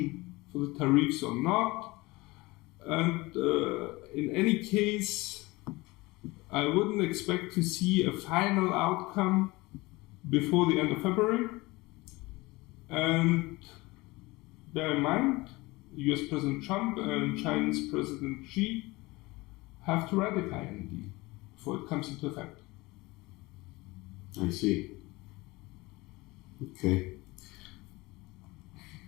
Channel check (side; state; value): right; quieter; 22.1 dB